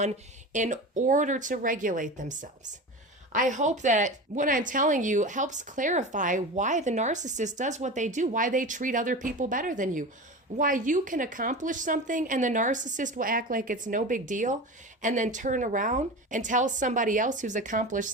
in order to regulate themselves. I hope that what I'm telling you helps clarify why the narcissist does what they do, why they treat other people better than you, why you can accomplish something and the narcissist will act like it's no big deal and then turn around and tell somebody else who's accomplished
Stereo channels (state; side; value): normal; both; correlation 0.29